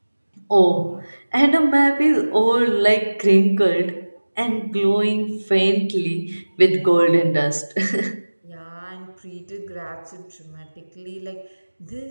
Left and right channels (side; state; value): both; inverted; correlation -1.00